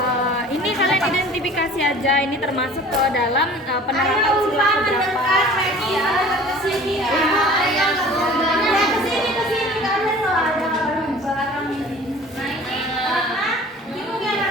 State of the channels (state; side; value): normal; both; correlation 0.46